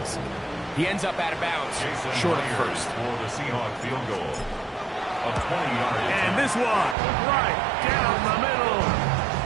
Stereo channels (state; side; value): drops out; left; at 7.0 s